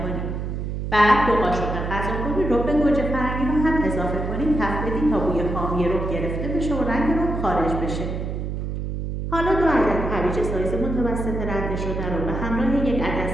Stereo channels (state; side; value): noise; right; hum, 4 dB below the sound